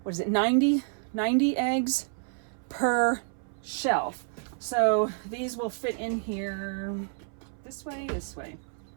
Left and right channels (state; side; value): silent; left; 58 dB below the other